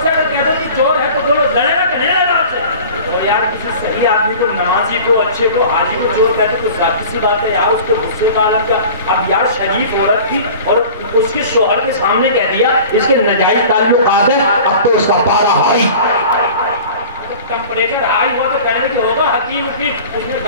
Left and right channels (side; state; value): both; inverted; correlation -0.41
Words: سے اگر کہتے ہو کہ چور ہے تو بولو لڑے گا کہ نہیں لڑے گا آپ سے. اور یار کسی صحیح آدمی کو, نمازی کو, اچھے کو, حاجی کو چور کہتے تو ظاہر سی بات ہے یار اس کے غصے کا عالم کیا. اب یار شریف عورت تھی اور اس کے شوہر کے سامنے کہہ دیا اس کے ناجائز تعلقات ہیں, اب تو اس کا پارا ہائی ٹمپریچر ہائی ہوا تو کہنے کی ہوگا حکیم پھر اس نے